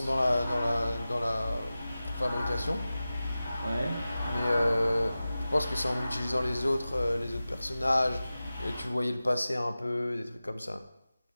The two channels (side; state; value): both; inverted; correlation -0.95